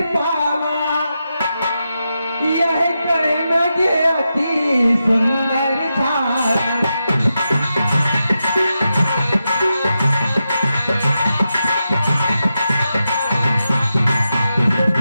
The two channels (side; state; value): both; inverted; correlation -0.88